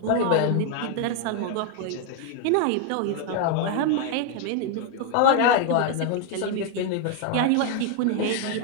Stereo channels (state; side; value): different; both; correlation 0.01